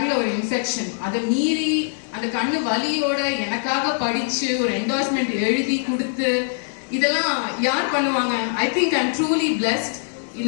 ஒரு இன்ஃபெக்ஷன், அதை மீறி அந்த கண்ணு வலியோட எனக்காக படிச்சு ஒரு என்டோர்ஸ்மெண்ட் எழுதி கொடுத்து, இதெல்லாம் யார் பண்ணுவாங்க? I think I am truly blessed.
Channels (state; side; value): silent; right; digital silence